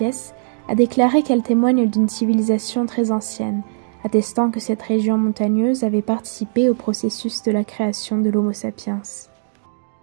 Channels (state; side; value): silent; left; digital silence